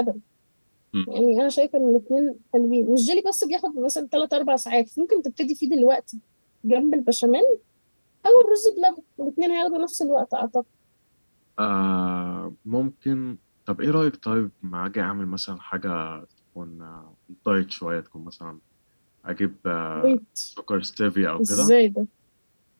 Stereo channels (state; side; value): inverted; both; correlation -1.00